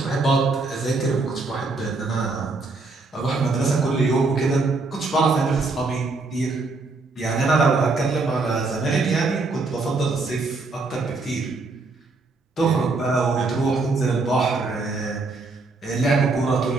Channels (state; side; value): quieter; left; 3.6 dB